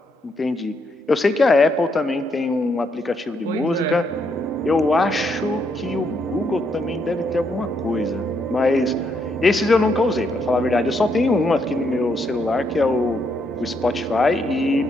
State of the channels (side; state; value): both; normal; correlation 0.76